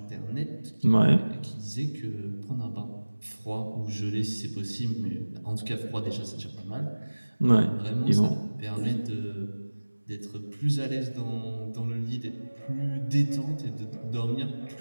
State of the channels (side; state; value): both; inverted; correlation -1.00